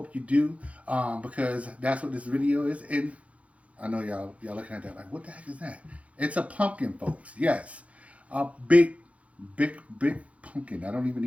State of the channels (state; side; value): late; left; 0.065 ms